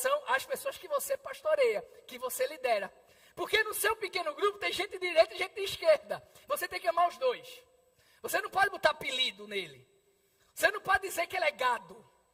às pessoas que você pastoreia, que você lidera. Porque no seu pequeno grupo tem gente de direita e gente de esquerda. Você tem que amar os dois. Você não pode botar apelido nele. Você não pode dizer que ele é gado.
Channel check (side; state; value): both; identical; correlation 1.00